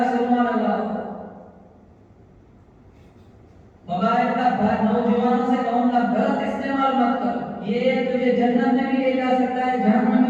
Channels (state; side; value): identical; both; correlation 1.00